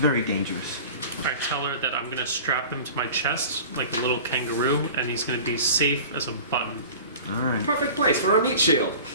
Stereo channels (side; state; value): both; inverted; correlation -0.39